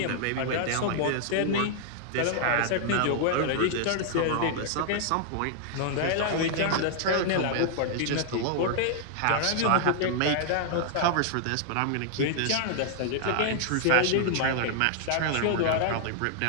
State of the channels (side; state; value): both; different; correlation 0.00